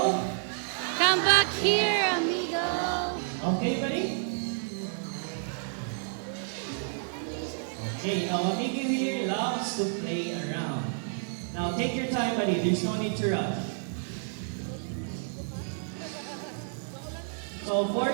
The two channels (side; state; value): left; silent; digital silence